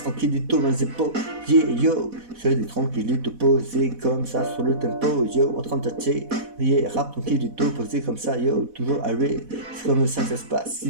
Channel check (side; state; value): left; late; 4.1 ms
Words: tranquillito dans les épaules, yeah yo, j'ai des tranquillito posés comme ça sur le tempo, yo, en train de tâter, yeah, rap tranquillito posé comme ça, yo, toujours arrêt, c'est comme ça que ça se passe, si